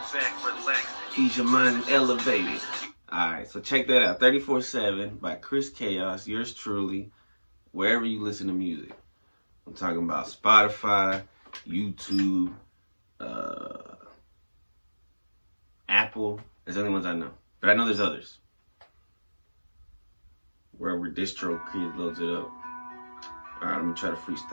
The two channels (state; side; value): inverted; both; correlation -1.00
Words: back, relax. Ease your mind and elevate it. Alright, so check that out. 34/7 by Chris Chaos, yours truly, wherever you listen to music. I'm talking about Spotify, YouTube, Apple. There's the only ones I know. But I know there's others. Wherever DistroKid loads it up. Alright, let me try to